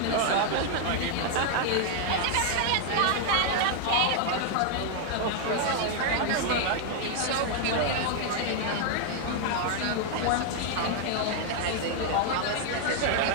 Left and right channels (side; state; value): both; different; correlation 0.00